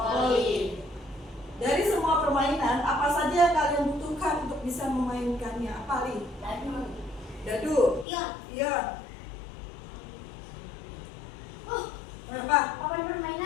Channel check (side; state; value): right; drops out; at 8.1 s